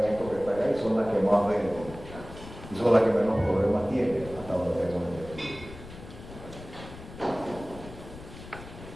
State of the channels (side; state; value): left; noise; rumble, 15 dB below the sound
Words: que está acá y son las que más venden y son las que menos problemas tienen hasta donde tengo entendido.